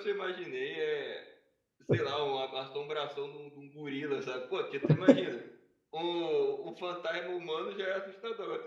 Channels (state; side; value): identical; both; correlation 1.00